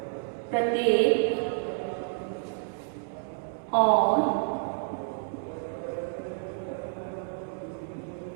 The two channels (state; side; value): silent; left; 58 dB below the other